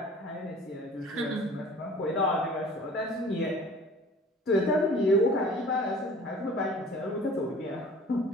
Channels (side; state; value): both; normal; correlation 0.46